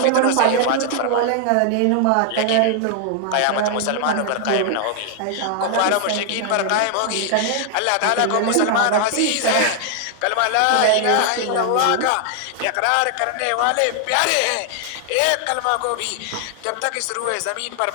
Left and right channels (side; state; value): both; different; correlation 0.00